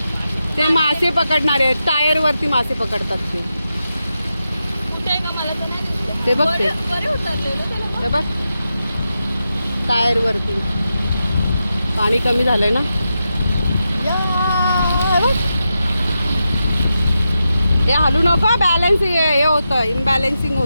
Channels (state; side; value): inverted; both; correlation -0.88